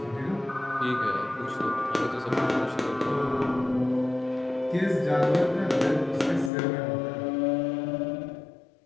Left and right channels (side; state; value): right; drops out; at 6.5 s